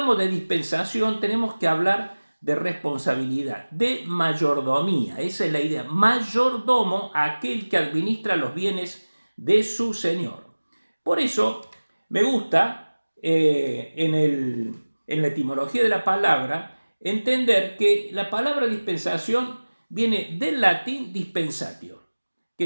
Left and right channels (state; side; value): inverted; both; correlation -1.00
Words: de dispensación, tenemos que hablar de responsabilidad, de mayordomía. Esa es la idea. Mayordomo, aquel que administra los bienes de su Señor. Por eso, me gusta en la etimología de la palabra entender que la palabra dispensación viene del latín dispensatio, que